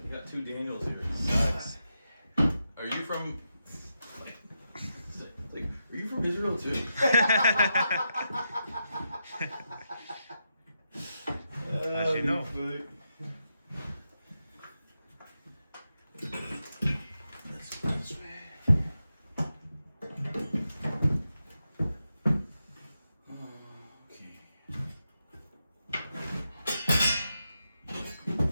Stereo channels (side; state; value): both; inverted; correlation -0.86